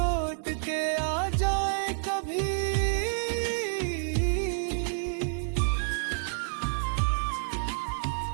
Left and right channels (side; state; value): left; silent; digital silence